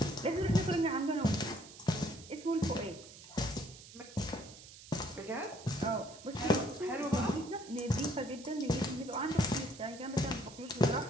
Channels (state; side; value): noise; right; hiss, 17 dB below the sound